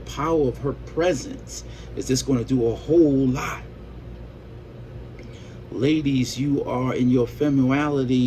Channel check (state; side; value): identical; both; correlation 1.00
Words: of her presence is just going to do a whole lot. Ladies, you are in your